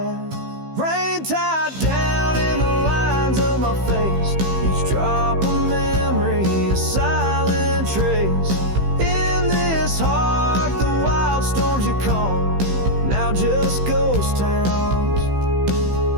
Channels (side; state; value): left; late; 15 ms